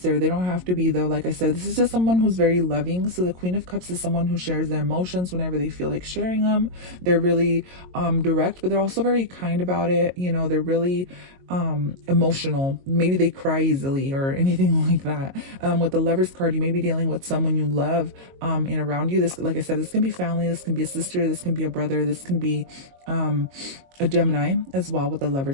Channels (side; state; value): left; late; 22 ms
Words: They don't have to be, though. Like I said, this is just someone who's very loving. So the Queen of Cups is someone who shares their emotions whenever they feel like sharing them. They're really direct, but they're also very kind about it. You know, they're really emotional. Maybe they cry easily or anything like that. With the Lovers card, you may be dealing with someone you love and around you. This, like I said, this can be family, this can be a sister, this can be a brother, this can be a Gemini as well, with the